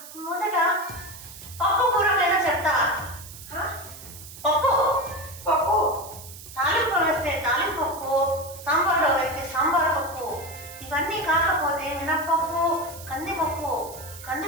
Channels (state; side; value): noise; right; hiss, 15 dB below the sound